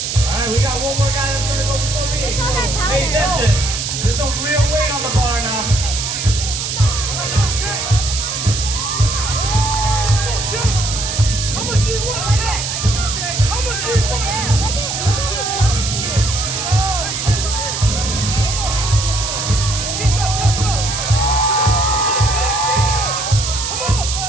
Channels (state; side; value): noise; right; hiss, 3 dB below the sound